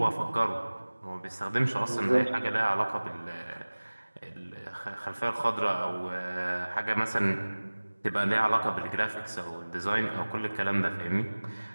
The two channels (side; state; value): both; inverted; correlation -1.00